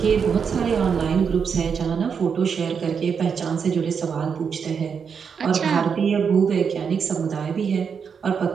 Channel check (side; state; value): left; quieter; 6.5 dB